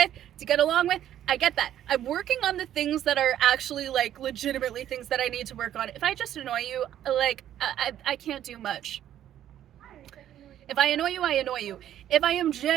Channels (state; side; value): quieter; left; 11.3 dB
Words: to get along with. I get that. I'm working on the things that are actually like legitimately things that I need to work on. If I just annoy you, like I can't do much. If I annoy you, I annoy you. If I am